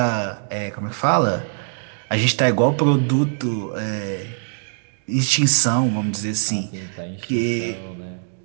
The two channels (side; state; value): left; silent; digital silence